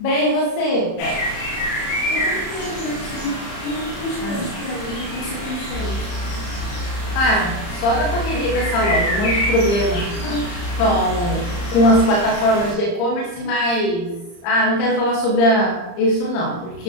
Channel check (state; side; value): late; right; 34 ms